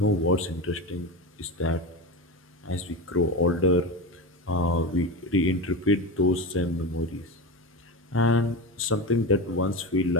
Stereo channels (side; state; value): both; normal; correlation 0.22